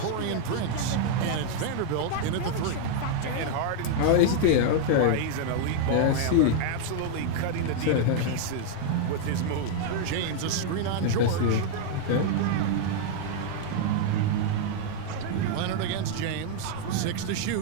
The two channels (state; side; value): different; both; correlation 0.00